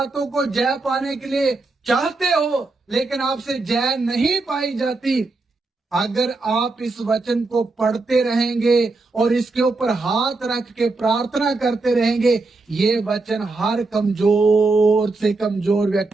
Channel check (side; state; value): left; quieter; 3.5 dB